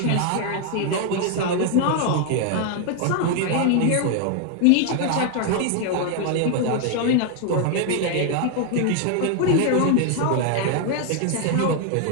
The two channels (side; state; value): both; different; correlation 0.00